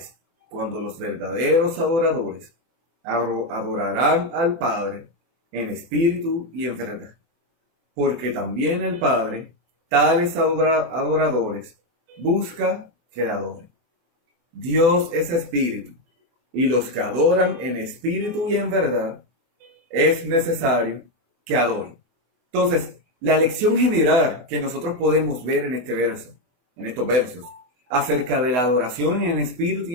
cuando los verdaderos adoradores adorarán al Padre en espíritu y en verdad, porque también el Padre tales adoradores busca que le adoren. Dios es espíritu, y los que adoran en espíritu y en verdad es necesario que adoren. Entonces, la lección general que nosotros podemos ver en este verso, en estos versos, acerca de la adoración en espíritu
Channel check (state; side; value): late; left; 24 ms